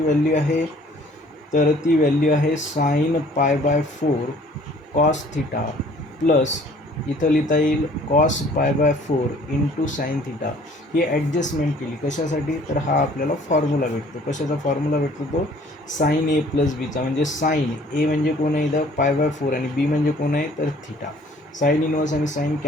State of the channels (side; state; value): both; normal; correlation 0.55